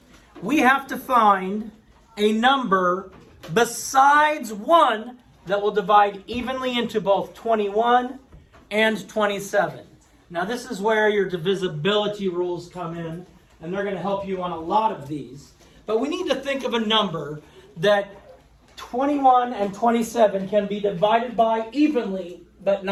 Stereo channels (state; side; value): identical; both; correlation 1.00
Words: we have to find a number besides 1 that will divide evenly into both 21 and 27. Now this is where your divisibility rules come in, and they're going to help you on a lot of these. But we need to think of a number that 21 and 27 can be divided by evenly, but